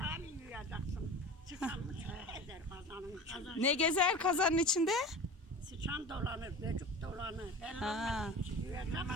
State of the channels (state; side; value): normal; both; correlation 0.35